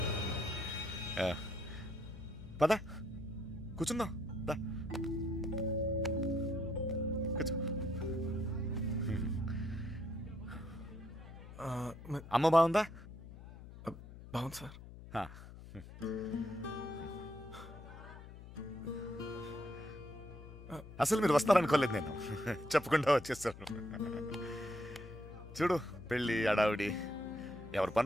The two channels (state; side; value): noise; left; hum, 15 dB below the sound